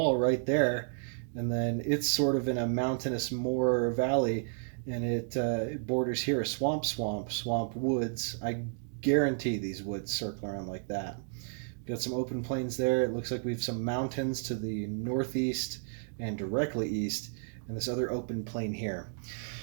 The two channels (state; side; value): silent; left; digital silence